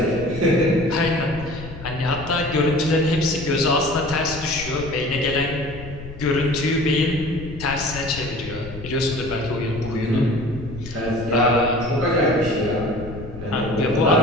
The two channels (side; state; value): left; noise; rumble, 13 dB below the sound